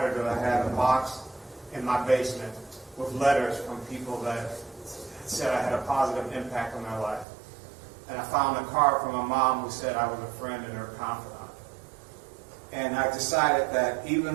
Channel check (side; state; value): left; drops out; at 7.2 s